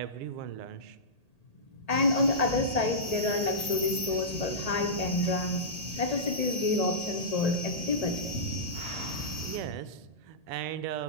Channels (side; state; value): right; late; 1.8 ms